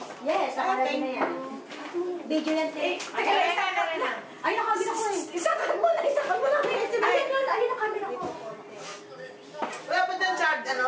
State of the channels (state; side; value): identical; both; correlation 1.00